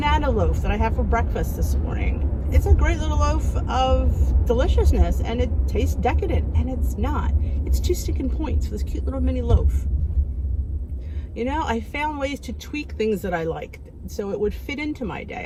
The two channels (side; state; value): both; identical; correlation 1.00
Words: loaf that I have for breakfast this morning. It's a great little loaf of deliciousness, and it tastes decadent, and it's not. It's 2 sticking points for this cute little mini loaf. You know, I found ways to tweak things that I liked so it would fit into my day.